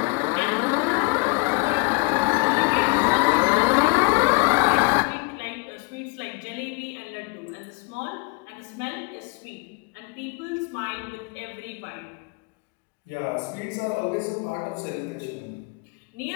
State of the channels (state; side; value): quieter; right; 30.3 dB